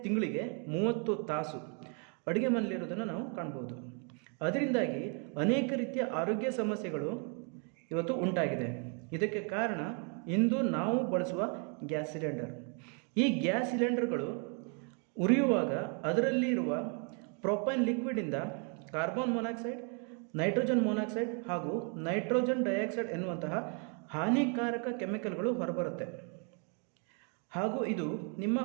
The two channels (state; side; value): quieter; left; 38.8 dB